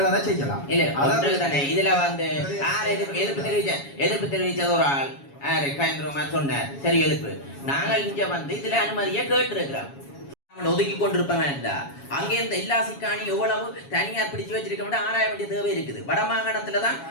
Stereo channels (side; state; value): right; late; 7.2 ms